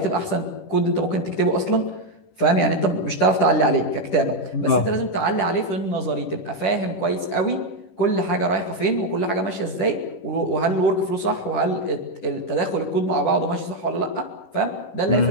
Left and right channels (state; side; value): late; right; 10 ms